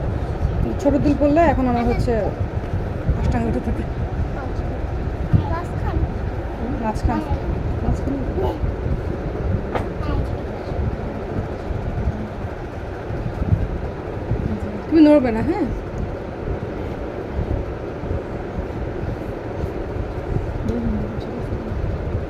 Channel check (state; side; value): identical; both; correlation 1.00